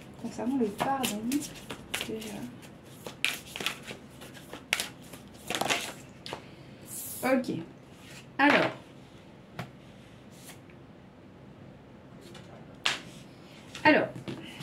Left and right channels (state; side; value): identical; both; correlation 1.00